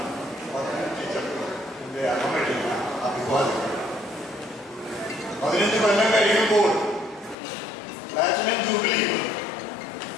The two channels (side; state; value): right; drops out; at 7.4 s